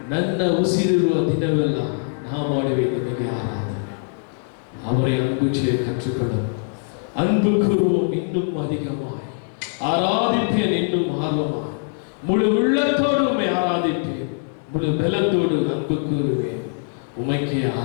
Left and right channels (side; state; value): right; silent; digital silence